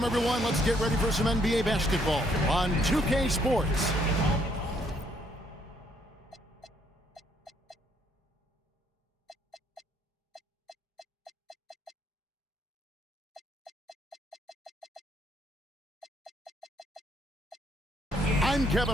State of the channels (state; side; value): normal; both; correlation 0.69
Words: everyone. Let's get ready for some NBA basketball on 2K Sports. I'm Kevin